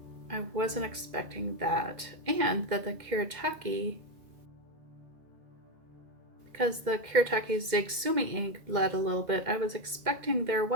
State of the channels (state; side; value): late; left; 2.1 ms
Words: I wasn't expecting that, and that the Kuretake, because the Kuretake Sumi ink bled a little bit, I was expecting their